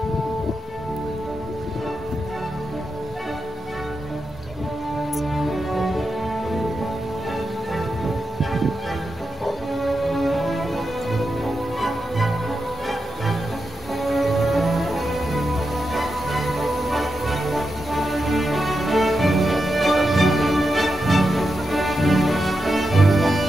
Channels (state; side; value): normal; both; correlation 0.88